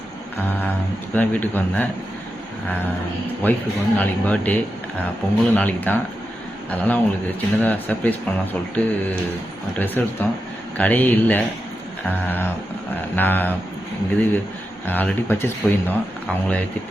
இப்போ தான் வீட்டுக்கு வந்தேன். ஒய்ஃபுக்கு வந்து நாளைக்கு பர்த்டே, பொங்கலும் நாளைக்கு தான். அதனால் அவங்களுக்கு சின்னதாக சர்ப்ரைஸ் பண்ணலாம் சொல்லிட்டு ட்ரெஸ் எடுத்தோம். கடையே இல்லை. நான் இது ஆல்ரெடி பர்ச்சேஸ் போயிருந்தோம். அவங்கள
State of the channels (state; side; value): normal; both; correlation 0.89